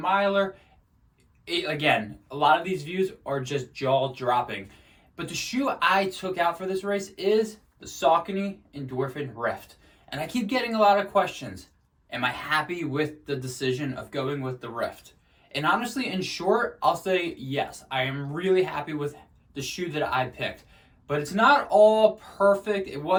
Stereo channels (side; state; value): both; identical; correlation 1.00